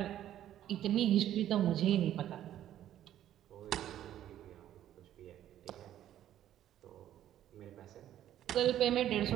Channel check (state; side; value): quieter; left; 11.8 dB